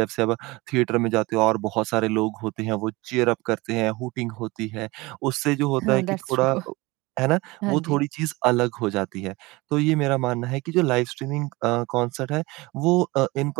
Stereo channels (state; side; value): quieter; left; 22.5 dB